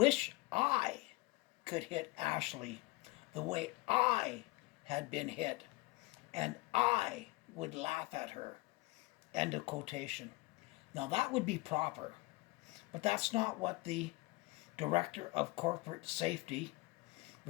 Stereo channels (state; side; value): quieter; right; 23.2 dB